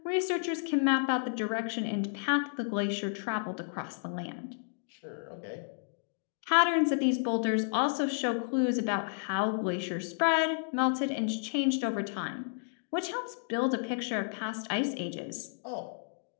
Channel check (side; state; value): right; silent; digital silence